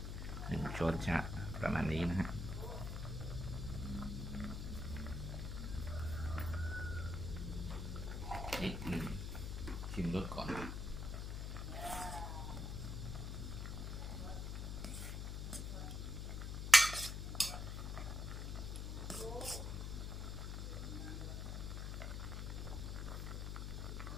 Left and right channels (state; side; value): noise; left; hum, 3 dB below the sound